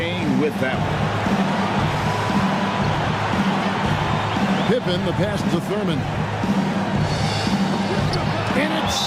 with them. Pippen, the pass to Thurman. And it's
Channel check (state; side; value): identical; both; correlation 1.00